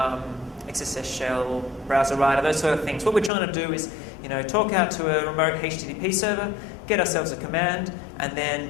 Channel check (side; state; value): right; drops out; at 3.3 s